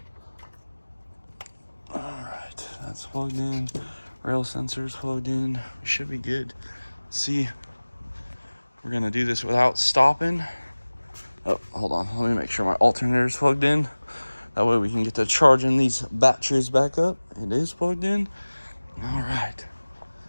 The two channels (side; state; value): both; inverted; correlation -1.00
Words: All right, that's plugged in, rail sensors plugged in, we should be good. See, we're gonna do this without stopping. Oh, hold on. Let me make sure my alternator is plugged in. That way we can get to charging these batteries back up. It is plugged in. All right.